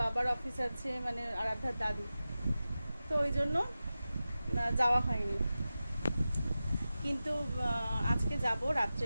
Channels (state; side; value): inverted; both; correlation -0.95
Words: অফিস আছে, মানে আরাধ্যার দাদু, তো ওই জন্য যাওয়া হয়নি। কিন্তু আজকে যাব